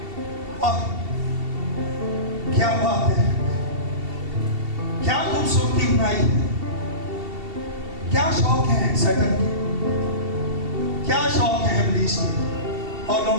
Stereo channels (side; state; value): left; late; 2.7 ms